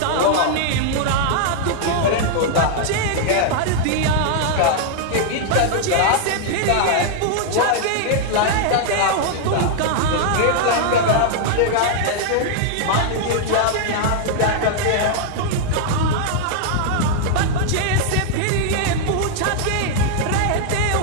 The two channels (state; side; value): different; both; correlation -0.01